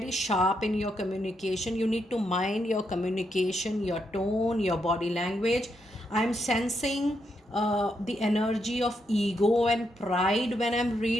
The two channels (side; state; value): both; normal; correlation 0.80